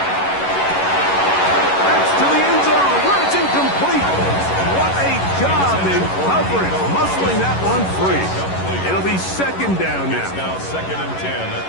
That's to the end zone where it's incomplete. What a job in coverage, muscling that one free. It'll be 2nd down now. It's now 2nd and 10 at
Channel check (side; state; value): right; late; 11 ms